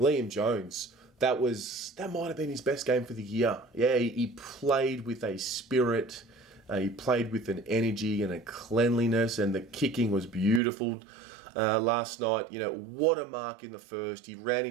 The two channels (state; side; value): drops out; left; at 10.6 s